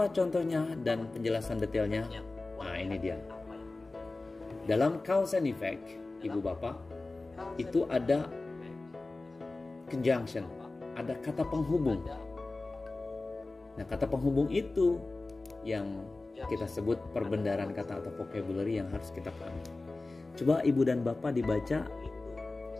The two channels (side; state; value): right; quieter; 3.3 dB